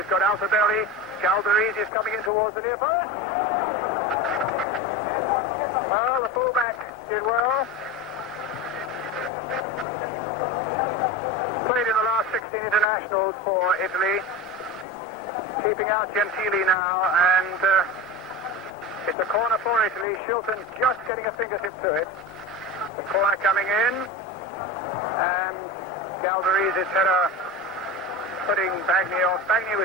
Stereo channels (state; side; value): normal; both; correlation 0.26